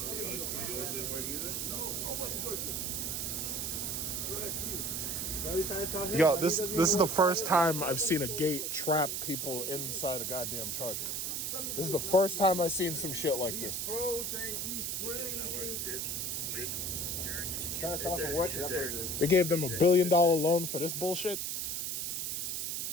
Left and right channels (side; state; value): right; noise; hiss, 2 dB below the sound